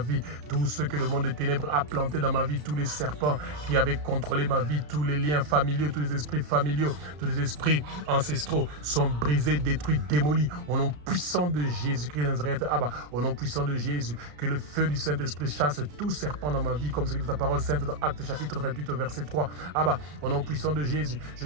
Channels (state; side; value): late; left; 33 ms